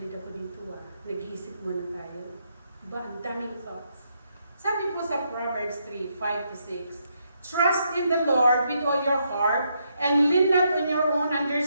ako dito nag-iisip muna tayo. Diba? Ang daming thoughts. Sabi po sa Proverbs 3:5-6, trust in the Lord with all your heart and lean not on your own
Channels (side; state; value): both; inverted; correlation -0.77